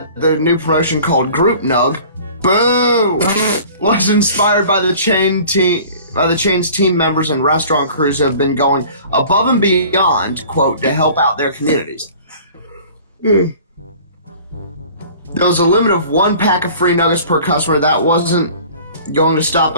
the new promotion called Group Nug, boo, was inspired by the chain's team members and restaurant crews who have been going above and beyond, quote, to help out their communities. There was a limit of 1 pack of free nuggets per customer. That wasn't going to stop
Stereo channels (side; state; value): both; inverted; correlation -0.46